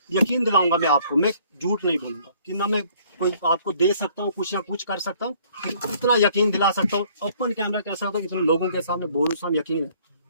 यकीन दिलाऊंगा मैं आपको, मैं झूठ नहीं बोलूंगा कि ना मैं कोई आपको दे सकता हूँ कुछ या कुछ कर सकता हूँ, इतना यकीन दिला सकता हूँ, ओपन कैमरा कह सकता हूँ, इतने लोगों के सामने बोलूँ यकीन है।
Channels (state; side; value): inverted; both; correlation -0.60